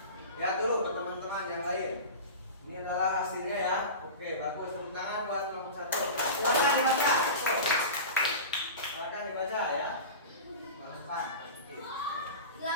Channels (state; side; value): inverted; both; correlation -0.30